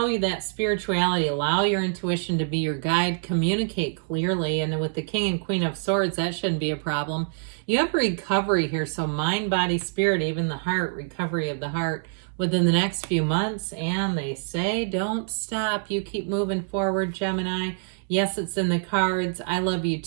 that spirituality, allow your intuition to be your guide, communicate clearly. And with the King and Queen of Swords, that shouldn't be a problem. You have recovery here. So mind, body, spirit, even the heart, recovery of the heart within the next few months. And they say, don't stop. You keep moving forward, Gemini. Yes, it's in the cards. I love you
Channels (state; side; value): silent; left; 61 dB below the other